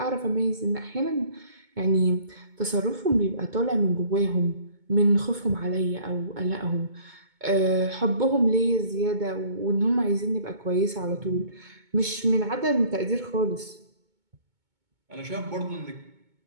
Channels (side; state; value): left; late; 2.2 ms